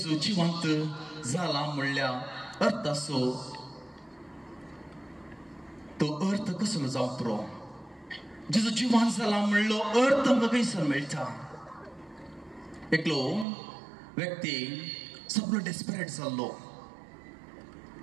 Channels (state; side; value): drops out; left; at 13.5 s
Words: जिवंत जाला म्हणल्या अर्थ असो तो अर्थ कसलो जावपरो जेजू जिवंत जाला म्हणलो अर्थ आमकां खंयसर मेळटा एकलो व्यक्ती सगळो डेस्परेट जाल्लो